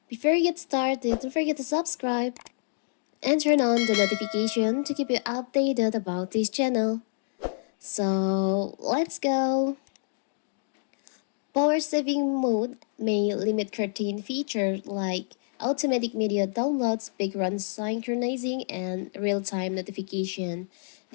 Before you get started, don't forget to subscribe and turn on the notification to keep you updated about this channel. So, let's go! Power saving mode may limit certain features like automatic media downloads, background synchronizing, and real-time notification.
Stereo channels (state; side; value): silent; right; digital silence